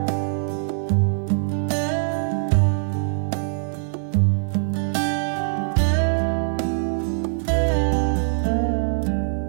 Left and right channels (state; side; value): silent; left; digital silence